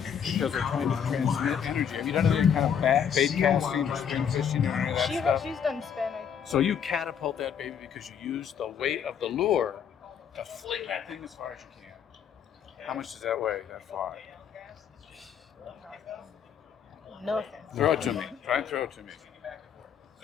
because they're trying to transmit energy, have you done any kind of bait casting or spin fishing or any of that stuff? She's done spin. So you catapult that baby because you use the weight of the lure to fling that thing as far as you can. How much does that weigh, that fly? No. Throw it to me. Try and throw it to me.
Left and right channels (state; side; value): quieter; right; 8.0 dB